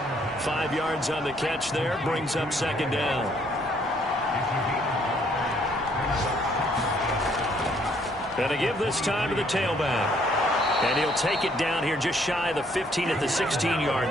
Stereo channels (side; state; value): both; normal; correlation 0.66